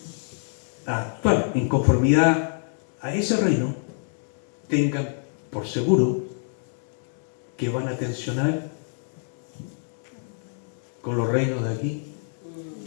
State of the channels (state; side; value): silent; right; 61 dB below the other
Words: a actuar en conformidad a ese reino, tengan por seguro que van a tensionar con los reinos de aquí